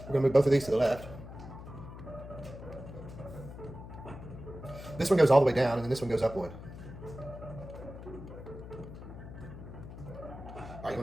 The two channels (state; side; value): noise; left; hum, 12 dB below the sound